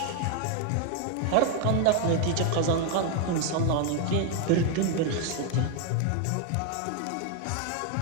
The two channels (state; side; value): different; both; correlation 0.01